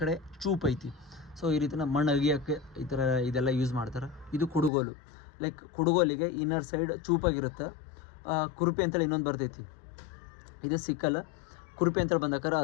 ಕಡೆ ಚೂಪ್ ಐತಿ. ಸೊ ಈ ರೀತಿ ನಮ್ಮ ಮಣ್ಣು ಅಗಿಯೋಕ್ಕೆ ಈ ಥರ ಇದೆಲ್ಲ ಯೂಸ್ ಮಾಡ್ತಾರೆ. ಇದು ಕುಡುಗೋಲು. ಲೈಕ್ ಕುಡುಗೋಲಿಗೆ ಇನ್ನರ್ ಸೈಡ್ ಚೂಪಾಗಿರುತ್ತೆ, ಕುರುಪಿ ಅಂತೇಳಿ ಇನ್ನೊಂದು ಬರ್ತೈತಿ, ಇದು ಸಿಕ್ಕಲ್. ಕುರುಪಿ ಅಂತೇಳಿ ಬಂದಾಗ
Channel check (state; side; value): drops out; right; at 4.7 s